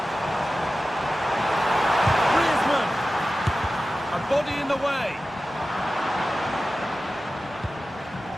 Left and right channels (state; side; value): normal; both; correlation 0.95